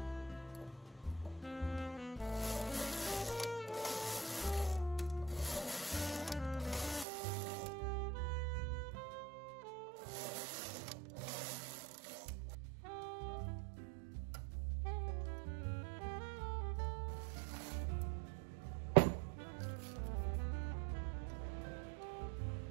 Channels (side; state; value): left; drops out; at 7.1 s